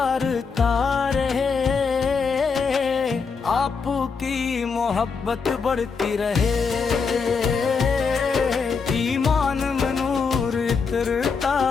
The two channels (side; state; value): right; quieter; 5.3 dB